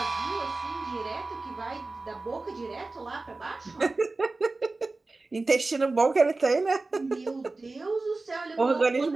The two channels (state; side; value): quieter; left; 3.4 dB